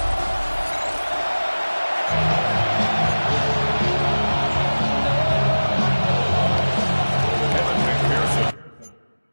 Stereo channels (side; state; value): both; inverted; correlation -1.00